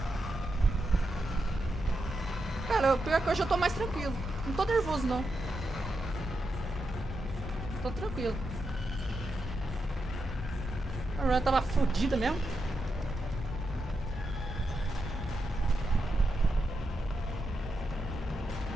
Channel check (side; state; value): both; normal; correlation 0.85